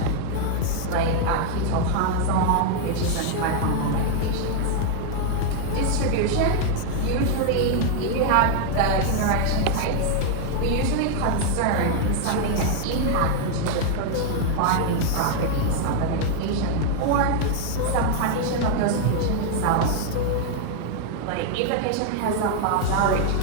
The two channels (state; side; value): different; both; correlation 0.00